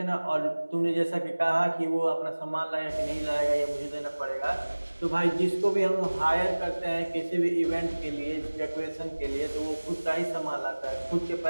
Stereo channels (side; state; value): both; inverted; correlation -1.00